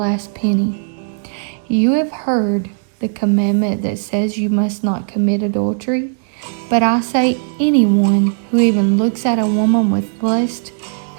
penny. You have heard the commandment that says you must not commit adultery, but I say anyone who even looks at a woman with lust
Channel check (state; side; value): silent; left; 68 dB below the other